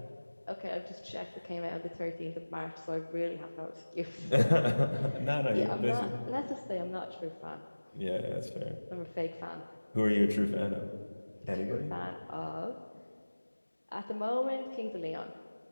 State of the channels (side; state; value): both; inverted; correlation -1.00